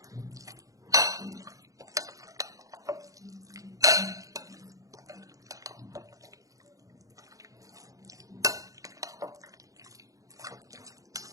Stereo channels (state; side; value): late; left; 0.16 ms